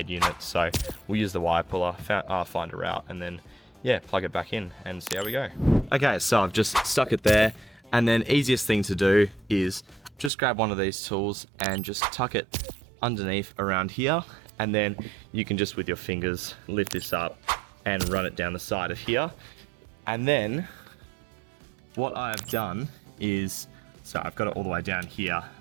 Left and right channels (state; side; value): drops out; left; at 10.3 s